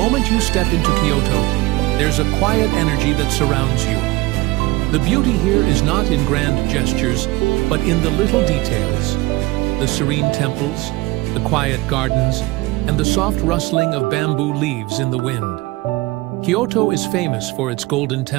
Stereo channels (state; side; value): quieter; left; 21.1 dB